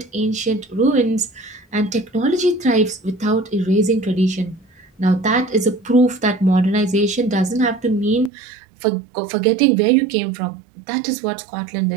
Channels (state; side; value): drops out; left; at 8.3 s